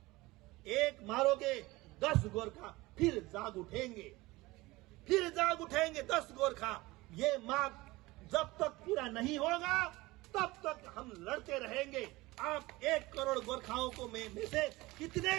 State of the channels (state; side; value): quieter; left; 20.6 dB